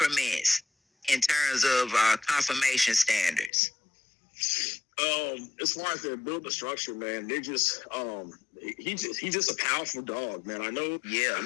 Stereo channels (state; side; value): drops out; right; at 3.5 s